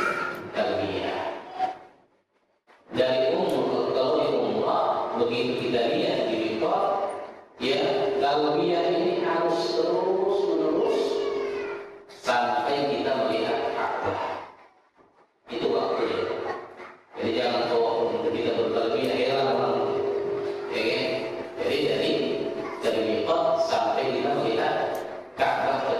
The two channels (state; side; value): identical; both; correlation 1.00